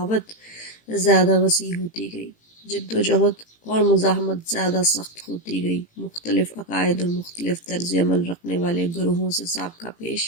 زیادہ وسیع ہوتی گئی، جد و جہد اور مزاحمت زیادہ سخت ہوتی گئی۔ مختلف عقائد اور مختلف طرز عمل رکھنے والے گروہوں سے سابقہ پیش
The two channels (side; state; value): right; late; 18 ms